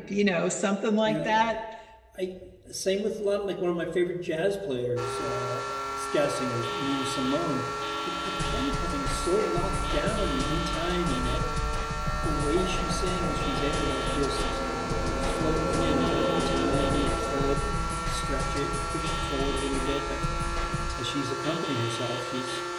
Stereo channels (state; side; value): identical; both; correlation 1.00